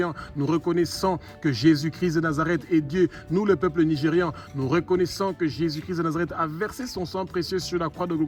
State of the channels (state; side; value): identical; both; correlation 1.00